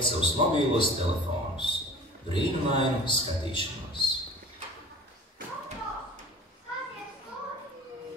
savus mobīlos telefonus, brīnumainu skatīšanos.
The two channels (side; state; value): both; normal; correlation 0.43